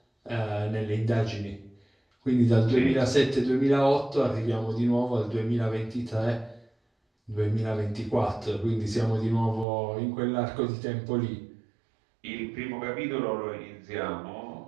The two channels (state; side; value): drops out; left; at 9.7 s